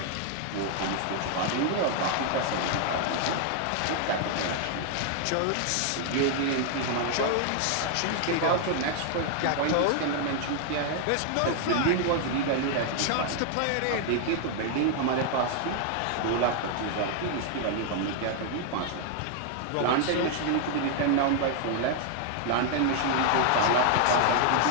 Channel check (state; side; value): different; both; correlation 0.00